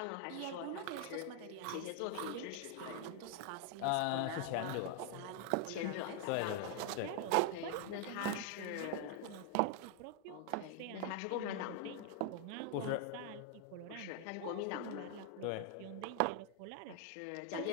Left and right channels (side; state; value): both; different; correlation 0.00